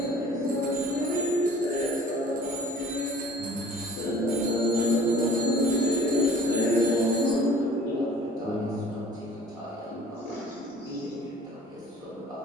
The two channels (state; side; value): normal; both; correlation 0.50